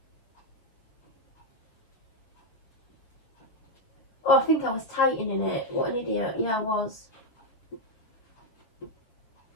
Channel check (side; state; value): right; late; 6.8 ms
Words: Oh, I think I was tightening it. What an idiot. Yeah, I was.